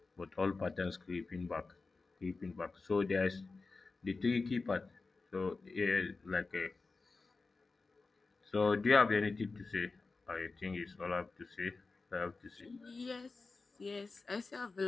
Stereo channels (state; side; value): quieter; right; 3.9 dB